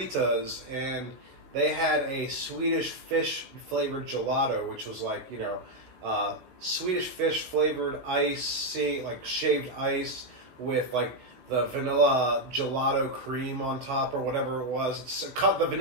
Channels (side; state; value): left; late; 16 ms